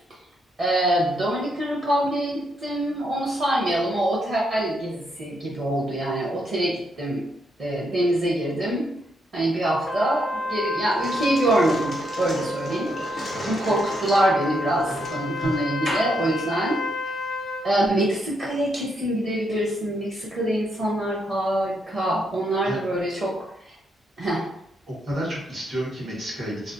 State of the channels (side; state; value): both; normal; correlation 0.77